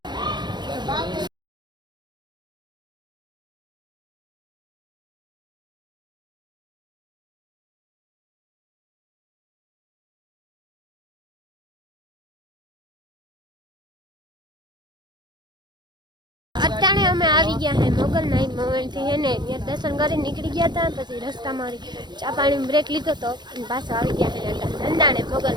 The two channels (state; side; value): late; left; 0.21 ms